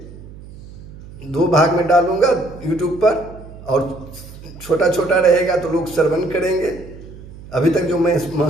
2 भाग में डालूंगा YouTube पर, और छोटा छोटा रहेगा तो लोग श्रवण करेंगे। अभी तक जो मैं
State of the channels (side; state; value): right; noise; hum, 17 dB below the sound